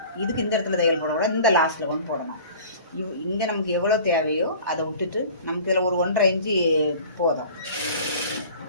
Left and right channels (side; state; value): both; inverted; correlation -0.44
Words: இதுக்கு இந்த இடத்துல தையல் போடக்கூடாது, இந்த லாஸ்ட்டில் கொண்டு போடணும். இங்கே நமக்கு எவ்வளோ தேவையோ அதை விட்டுட்டு நமக்கு இதில் ஒரு 1.5 இன்ச்சு போதும்.